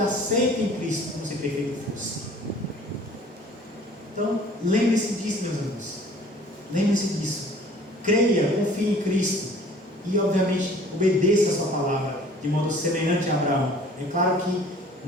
aceito em Cristo, como se perfeito fosse. Então, lembre-se disso, meus irmãos. Lembre-se disso. Creia, confie em Cristo e, obviamente, obedeça a sua palavra de modo semelhante a Abraão. É claro que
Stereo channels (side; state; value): both; normal; correlation 0.51